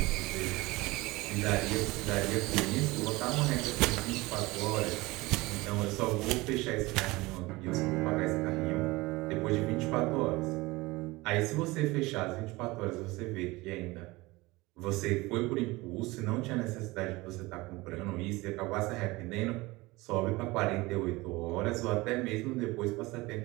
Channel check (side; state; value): left; quieter; 21.6 dB